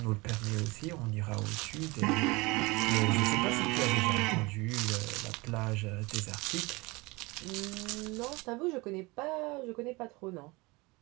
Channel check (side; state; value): left; quieter; 24.2 dB